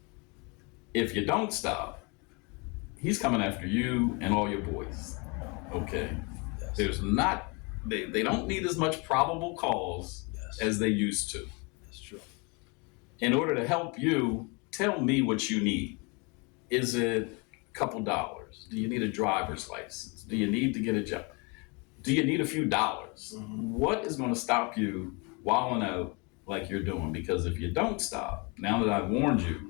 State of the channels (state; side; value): quieter; right; 30.7 dB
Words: If you don't stop, he's coming after you and all your boys. Okay. Yes. There's not, they don't need as much probable cause as they used to. That's true. In order to help you, tell me what you need. Is it a couple dollars? Do you need a driver's license? Do you need to get a job? Do you need a few dollars? Mm-hmm. What is going to stop you wilding out like you're doing? Because if you don't stop, now that I've warned